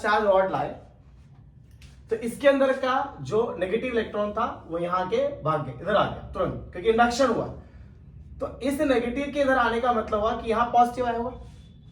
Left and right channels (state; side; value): identical; both; correlation 1.00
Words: चार्ज रॉड लाए तो इसके अंदर का जो नेगेटिव इलेक्ट्रॉन था वो यहाँ के भाग गए, इधर आ गया तुरंत, क्योंकि इंडक्शन हुआ। तो इस नेगेटिव के इधर आने का मतलब हुआ कि यहाँ पॉजिटिव आया हुआ।